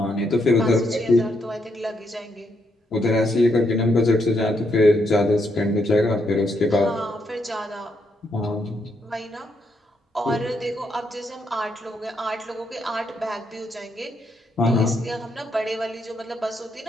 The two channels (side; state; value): both; normal; correlation 0.77